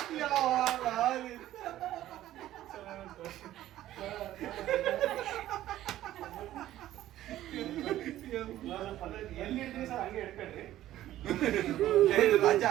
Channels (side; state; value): left; quieter; 13.7 dB